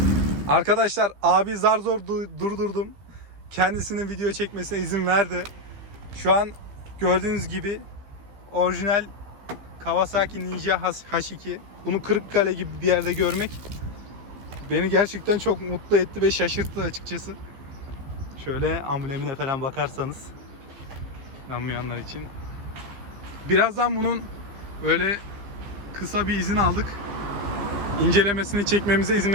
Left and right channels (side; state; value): left; late; 15 ms